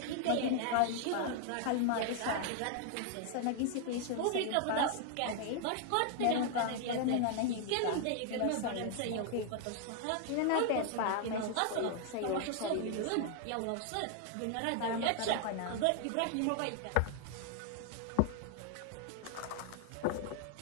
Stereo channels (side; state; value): both; different; correlation 0.00